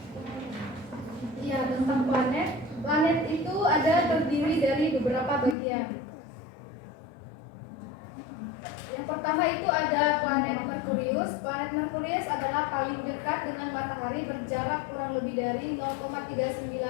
Ya, tentang planet. Planet itu ada terdiri dari beberapa bagian. Yang pertama itu ada planet Merkurius. Planet Merkurius adalah paling dekat dengan matahari, berjarak kurang lebih dari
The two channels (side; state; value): right; drops out; at 5.6 s